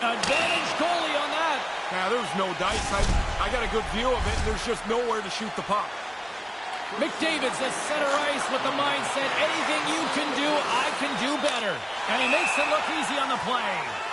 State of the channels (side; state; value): both; identical; correlation 1.00